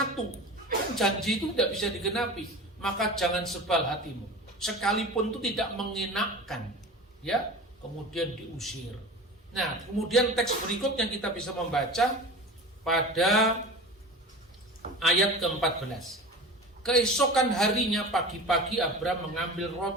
kan janji itu tidak bisa digenapi. Maka jangan sebal hatimu, sekalipun itu tidak mengenakkan, ya, kemudian diusir. Nah, kemudian teks berikutnya kita bisa membaca pada ayat ke-14. Keesokan harinya pagi-pagi Abraham mengambil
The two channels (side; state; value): both; normal; correlation 0.34